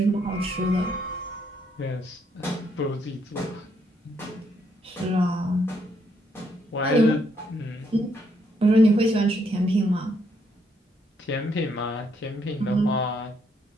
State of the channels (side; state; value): both; normal; correlation 0.73